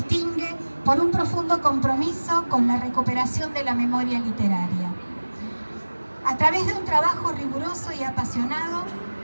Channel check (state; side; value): inverted; both; correlation -1.00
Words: por un profundo compromiso con la recuperación de la memoria literaria. A través de un trabajo riguroso y apasionado,